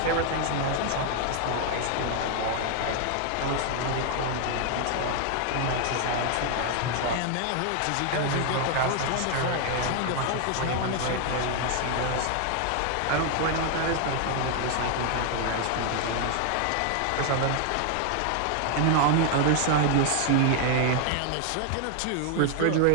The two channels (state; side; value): different; both; correlation 0.00